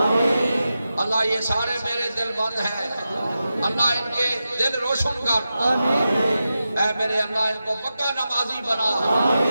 اللہ یہ سارے میرے دل بند ہیں، اللہ ان کے دل روشن کر، اے میرے اللہ ان کو پکا نمازی بنا،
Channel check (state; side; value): inverted; both; correlation -0.91